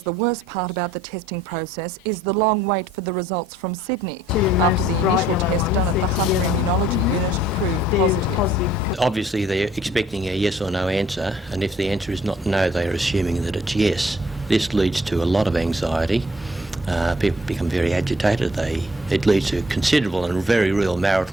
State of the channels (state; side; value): normal; both; correlation 0.61